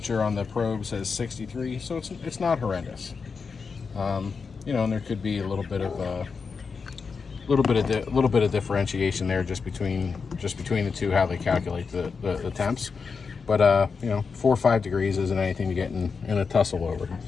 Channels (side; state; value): right; quieter; 5.2 dB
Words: on the probe says 63, so it's not horrendous. You know, and there could be a little bit of differentiation there just between the two, how they calculate the temps. But you know, 4 or 5 degrees isn't anything to get in a tussle over.